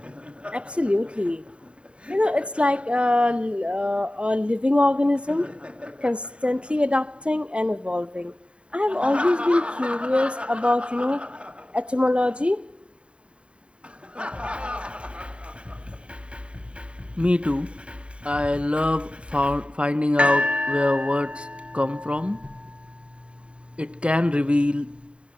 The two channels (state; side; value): late; left; 0.057 ms